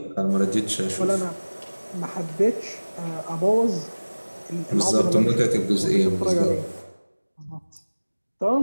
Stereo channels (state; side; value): inverted; both; correlation -1.00